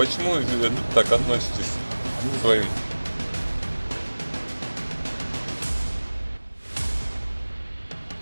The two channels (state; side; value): inverted; both; correlation -1.00